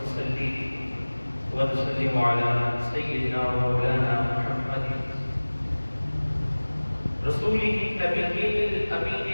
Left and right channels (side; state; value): both; inverted; correlation -1.00